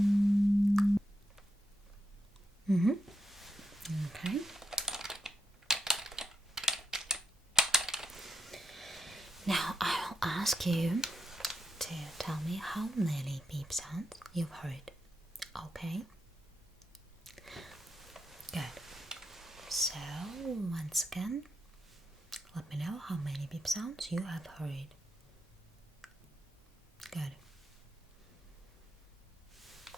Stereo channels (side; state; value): both; normal; correlation 0.83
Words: Okay. Now I will ask you to tell me how many beep sounds you've heard. Okay? Good. So, once again, let me know how many beep sounds you have heard. Good.